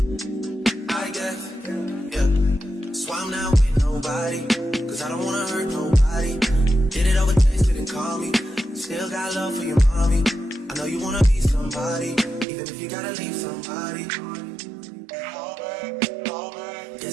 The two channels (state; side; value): drops out; left; at 12.5 s